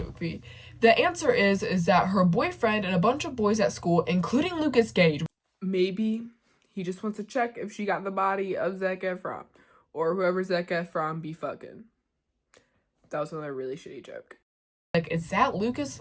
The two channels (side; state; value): both; identical; correlation 1.00